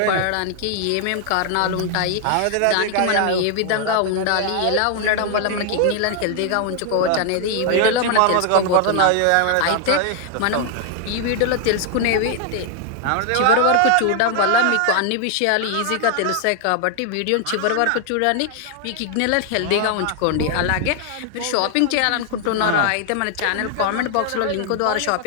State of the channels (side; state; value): both; different; correlation 0.00